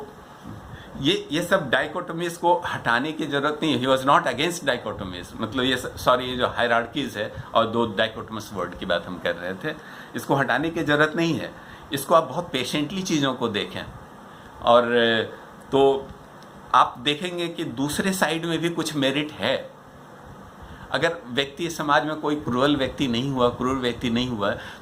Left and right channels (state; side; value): identical; both; correlation 1.00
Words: ये सब डाइकोटोमीज को हटाने की ज़रूरत नहीं है। ही वॉज नॉट अगेंस्ट डाइकोटोमीज, मतलब ये जो हायरार्कीज़ है और दो डाइकोटोमस वर्ड की बात हम कर रहे थे, इसको हटाने की ज़रूरत नहीं है। इसको आप बहुत पेशेंटली चीज़ों को देखें और तो आप देखेंगे कि दूसरे साइड में भी कुछ मेरिट है। अगर व्यक्ति समाज में कोई क्रूर व्यक्ति नहीं हुआ